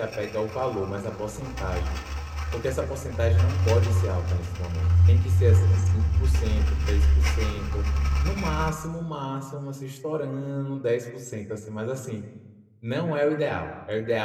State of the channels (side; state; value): both; identical; correlation 1.00